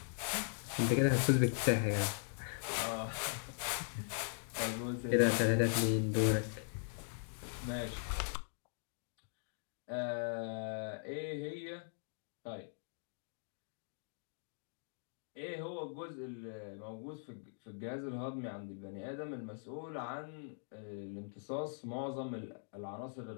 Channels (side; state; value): right; silent; digital silence